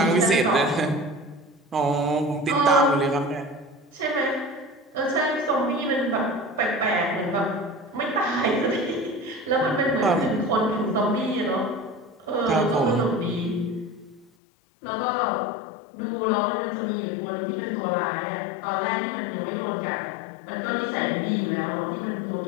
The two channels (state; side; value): drops out; right; at 14.3 s